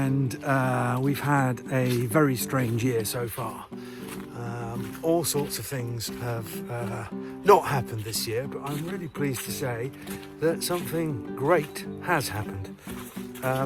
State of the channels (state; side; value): identical; both; correlation 1.00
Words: we've had a very strange year so far. All sorts of things have not happened this year, but I'm really pleased to say that something great has happened.